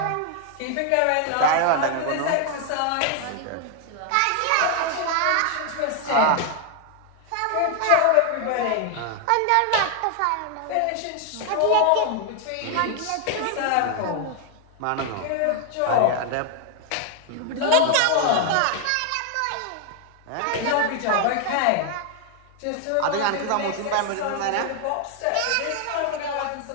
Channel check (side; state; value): both; different; correlation 0.00